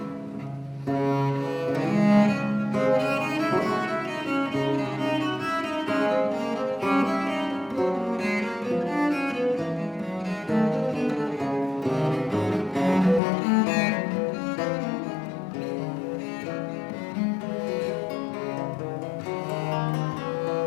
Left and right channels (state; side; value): drops out; right; at 13.2 s